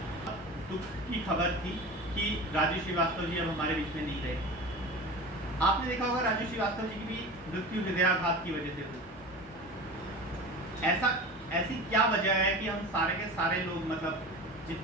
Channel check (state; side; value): normal; both; correlation 0.33